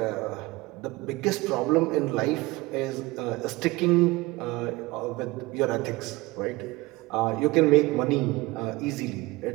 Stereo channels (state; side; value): quieter; left; 21.5 dB